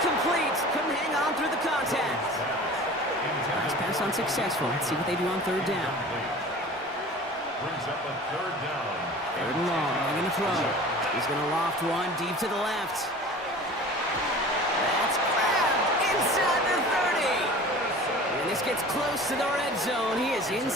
Couldn't hang on through the contact. Nice pass unsuccessful. Let's see what they do on 3rd down. Brings up a 3rd down. 3rd and long. They're going to throw. He's going to loft one deep to the left. That's grabbed inside the 30. And this gets close to the red zone. He is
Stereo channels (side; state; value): both; normal; correlation 0.41